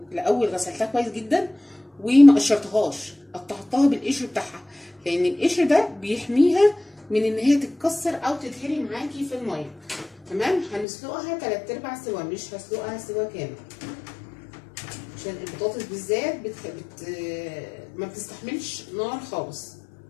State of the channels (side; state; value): right; drops out; at 10.9 s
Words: غسلتها كويس جدا وما قشرتهاش، قطعتها بالقشر بتاعها، لان القشر ده بيحميها من ان هي تتكسر او تتهري معاكي في الميه. تمام، هنسلقها 3/4 سوا، مش هسلقها سوا كامل، عشان البطاطس بالذات ما بتستحملش نار خالص.